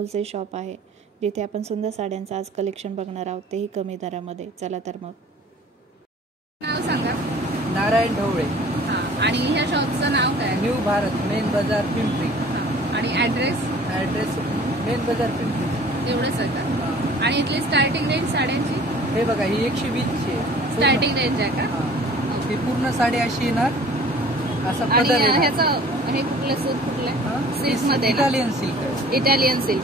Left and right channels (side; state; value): both; normal; correlation 0.49